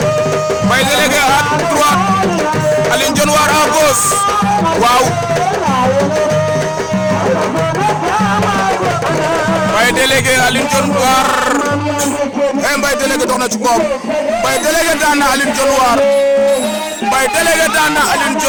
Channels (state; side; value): identical; both; correlation 1.00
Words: Mbaye délégué à droite Aline Dione War à gauche waaw Mbaye délégué Aline Dione War Mbaye délégué dox na ci koom Mbaye délégué daan na Aline Dione War Mbaye délégué daan na Aline